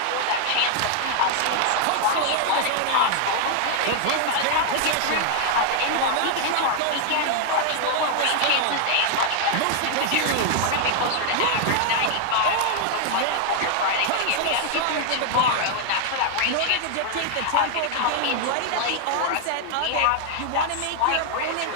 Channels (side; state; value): both; different; correlation 0.00